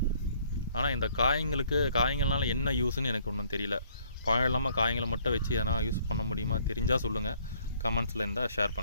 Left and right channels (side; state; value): both; inverted; correlation -0.63